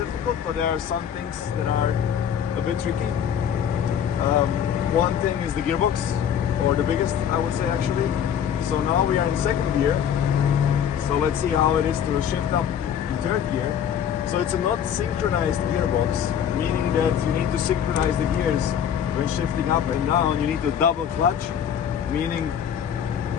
but there are some things that are a bit tricky. One thing is the gearbox, or the biggest, I would say, actually. So now we are in second gear, so let's see how it is to shift up in third gear. So it's a not synchronized gearbox, meaning that you need to synchronize the gears when shifting up and down. You need to double clutch, meaning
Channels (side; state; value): right; quieter; 8.8 dB